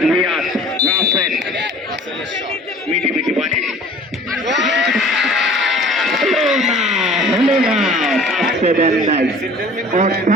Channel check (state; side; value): normal; both; correlation 0.48